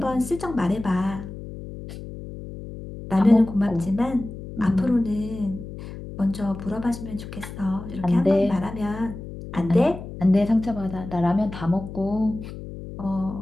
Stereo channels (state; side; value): noise; left; hum, 11 dB below the sound